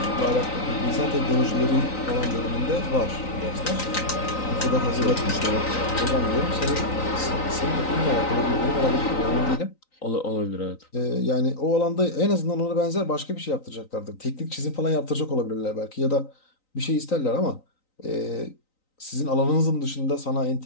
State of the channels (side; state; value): right; late; 3.9 ms